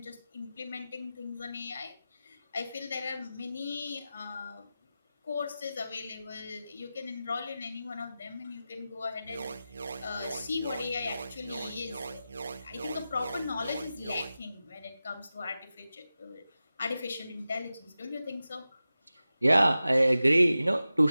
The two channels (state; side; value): inverted; both; correlation -0.94